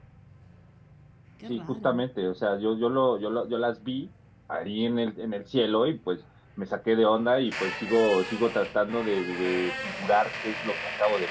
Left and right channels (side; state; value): both; identical; correlation 1.00